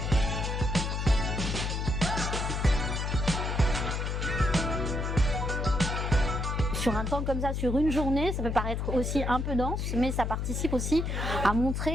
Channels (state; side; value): noise; left; hum, 1 dB below the sound